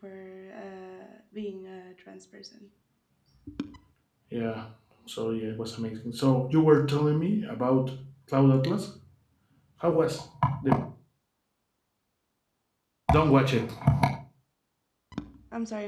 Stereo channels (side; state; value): both; identical; correlation 1.00